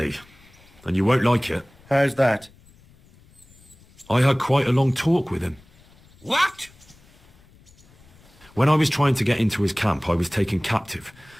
and you won't like it. How's that? I had quite a long talk with him. What? When I was trying to get into his camp, I was taken captive.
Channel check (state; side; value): noise; left; rumble, 27 dB below the sound